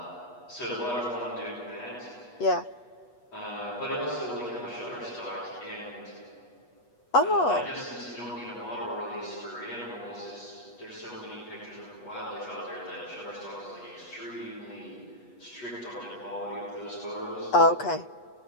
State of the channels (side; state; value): right; late; 8.2 ms